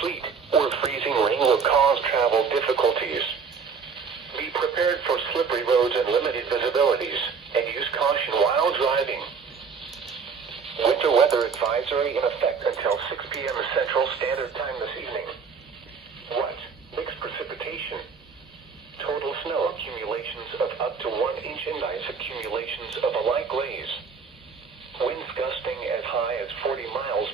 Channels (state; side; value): quieter; left; 5.7 dB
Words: or freezing rain will cause travel difficulties. Be prepared for slippery roads and limited visibilities, and use caution while driving. Winter weather advisory in effect until 6 p.m. Central Standard Time this evening. What? Mixed precipitation. Total snow accumulations of up to 1 inch and ice accumulations of a light glaze. Winds gusting as high as 40 miles